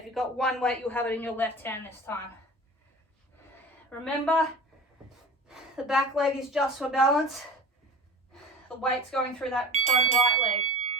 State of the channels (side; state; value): both; normal; correlation 0.36